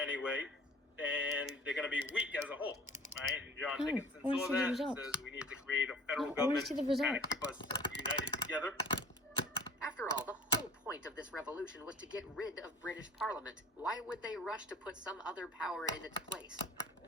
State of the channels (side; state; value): both; normal; correlation 0.48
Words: way, then they're going to be weak as a whole, right? And John Dickinson saw that and says we need to create a federal government to kind of keep us united together. After all, the whole point of this revolution was to get rid of British Parliament. Why would they rush to put some other power in its place?